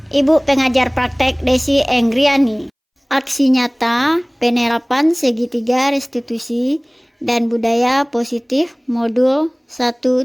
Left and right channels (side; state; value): both; identical; correlation 1.00